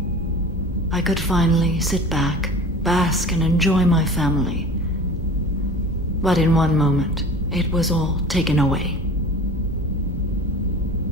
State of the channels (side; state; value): both; normal; correlation 0.38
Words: I could finally sit back, bask and enjoy my family. But in one moment, it was all taken away.